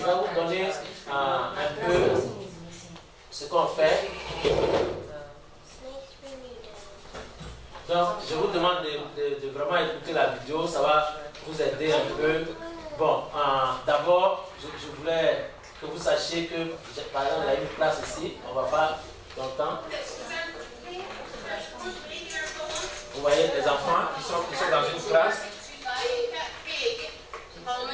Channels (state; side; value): identical; both; correlation 1.00